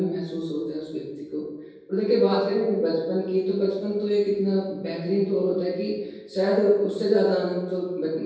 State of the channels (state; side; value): identical; both; correlation 1.00